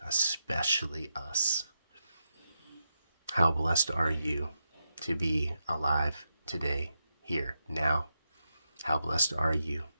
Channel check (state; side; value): inverted; both; correlation -0.86